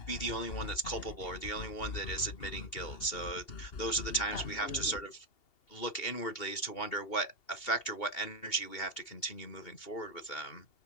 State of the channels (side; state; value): right; late; 2.8 ms